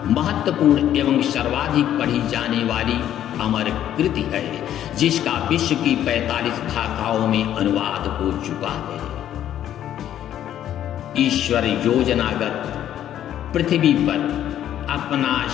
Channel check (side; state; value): right; quieter; 11.2 dB